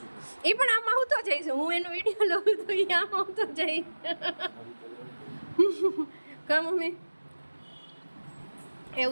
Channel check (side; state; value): both; inverted; correlation -1.00